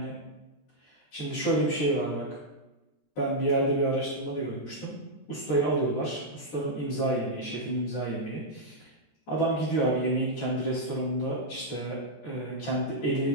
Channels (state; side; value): late; right; 14 ms